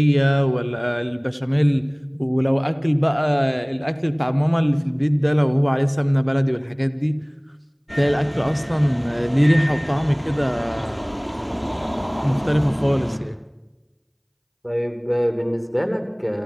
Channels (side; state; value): both; identical; correlation 1.00